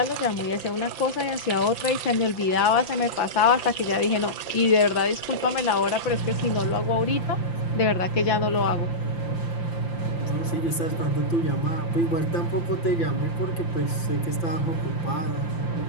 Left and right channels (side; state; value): right; late; 5.8 ms